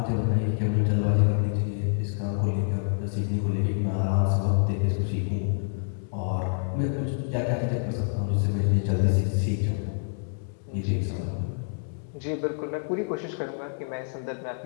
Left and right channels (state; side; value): silent; right; digital silence